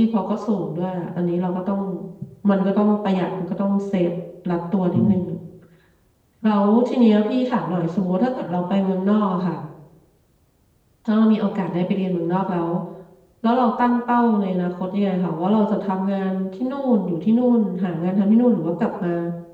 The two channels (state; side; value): identical; both; correlation 1.00